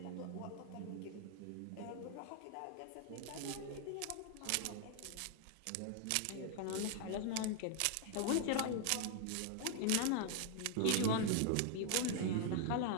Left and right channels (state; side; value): different; both; correlation 0.00